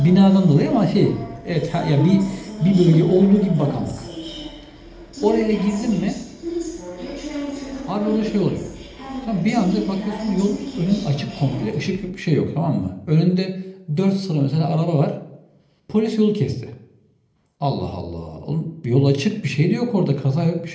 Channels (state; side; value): identical; both; correlation 1.00